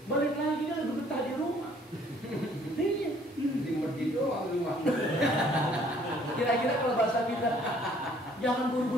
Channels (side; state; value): both; normal; correlation 0.60